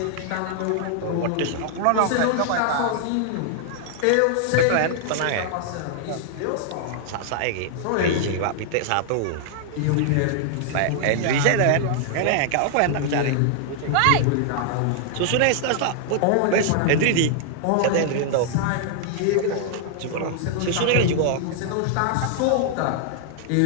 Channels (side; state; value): both; different; correlation 0.00